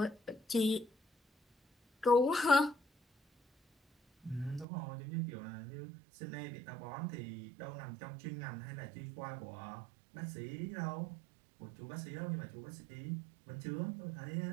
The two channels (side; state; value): left; drops out; at 4.7 s